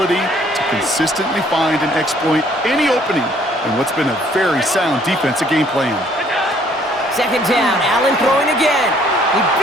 to consistently find and exploit any opening in what's been a very sound defensive game plan. 2nd down, Allen throwing again. He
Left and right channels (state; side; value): normal; both; correlation 0.62